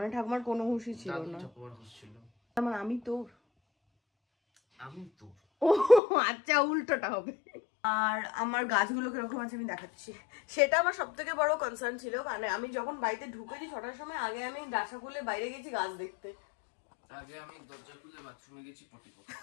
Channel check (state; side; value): drops out; right; at 6.0 s